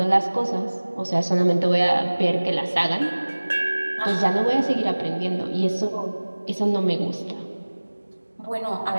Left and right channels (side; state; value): both; inverted; correlation -1.00